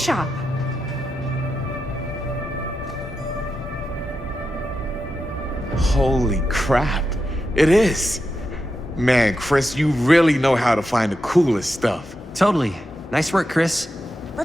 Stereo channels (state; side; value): normal; both; correlation 0.87